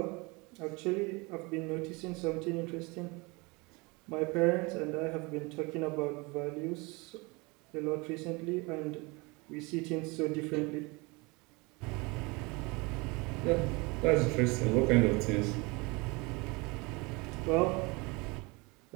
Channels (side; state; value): left; quieter; 26.7 dB